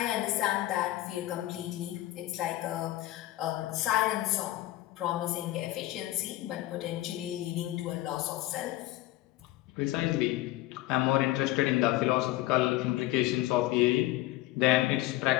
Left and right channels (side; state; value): right; quieter; 16.3 dB